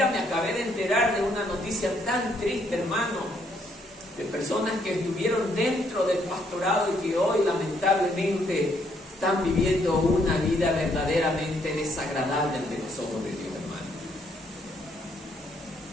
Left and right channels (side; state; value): both; normal; correlation 0.71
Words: me acabé de enterar de una noticia tan triste, hermano, de personas que estuvieron dentro del pastorado y que hoy lamentablemente están viviendo una vida verdaderamente desagradable ante los ojos de Dios, hermano.